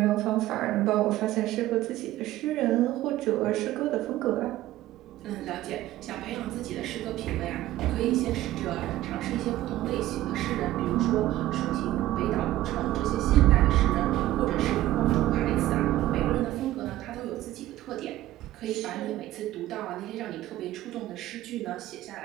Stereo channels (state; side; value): quieter; left; 15.2 dB